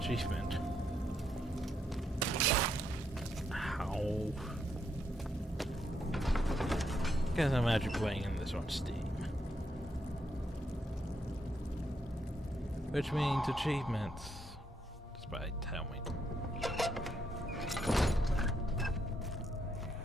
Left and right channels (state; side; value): normal; both; correlation 0.78